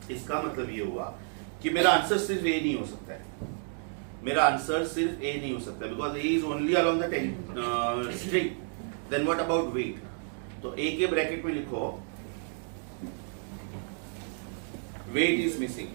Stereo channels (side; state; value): left; silent; 57 dB below the other